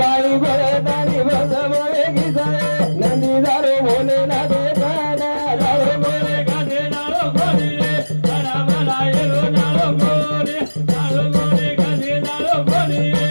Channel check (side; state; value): both; inverted; correlation -1.00